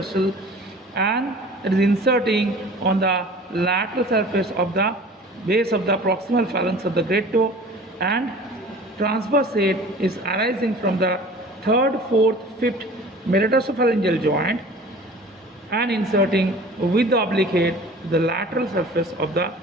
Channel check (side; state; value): both; normal; correlation 0.44